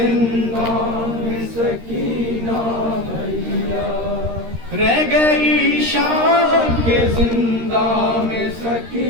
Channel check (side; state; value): left; late; 13 ms